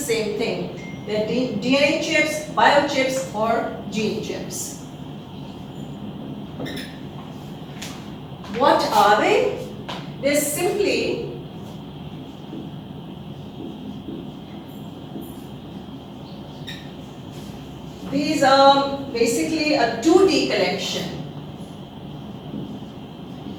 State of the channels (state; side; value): identical; both; correlation 1.00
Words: thing. They're DNA chips, biochips, or gene chips. What are they? They're simply these are basically a 2D collection,